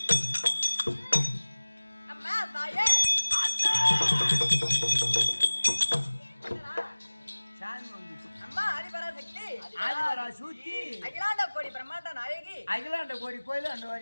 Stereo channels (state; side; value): inverted; both; correlation -1.00